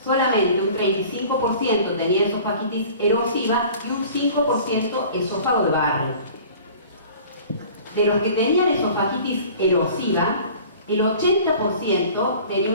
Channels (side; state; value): both; inverted; correlation -0.45